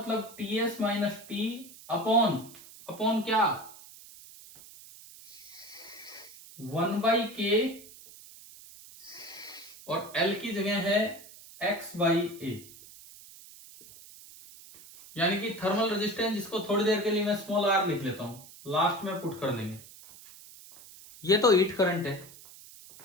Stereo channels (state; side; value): noise; right; hiss, 19 dB below the sound